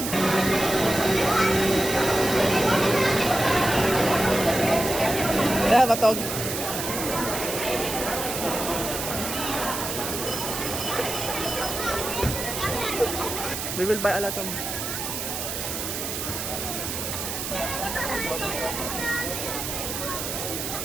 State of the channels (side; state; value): right; noise; hiss, 4 dB below the sound